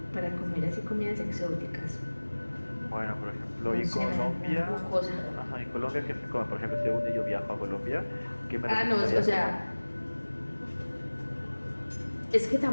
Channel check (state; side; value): inverted; both; correlation -1.00